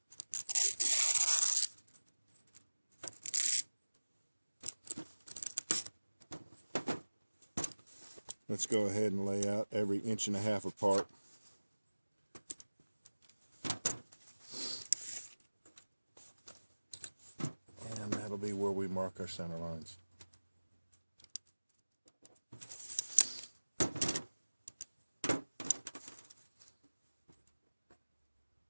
let's go ahead and lay out every 1.5 inches apart. And that'll be where we mark our center lines.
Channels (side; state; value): both; inverted; correlation -1.00